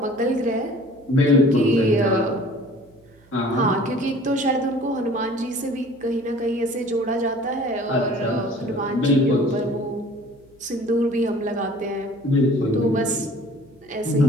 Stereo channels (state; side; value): noise; right; hum, 29 dB below the sound